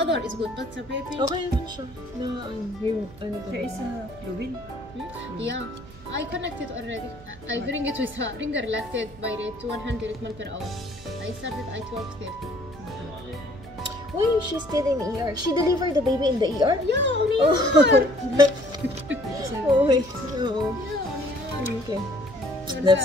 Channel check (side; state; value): right; noise; hum, 21 dB below the sound